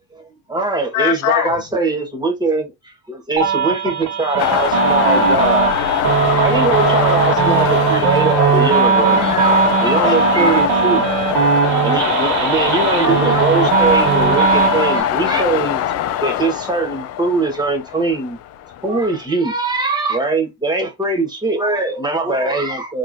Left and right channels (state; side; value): normal; both; correlation -0.02